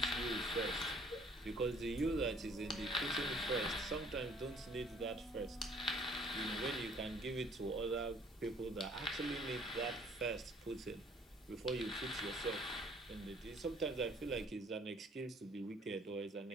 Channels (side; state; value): both; normal; correlation 0.57